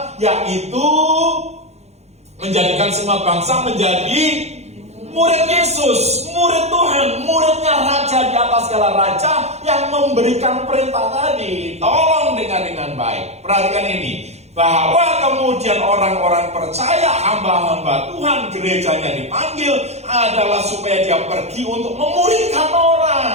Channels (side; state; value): left; late; 0.31 ms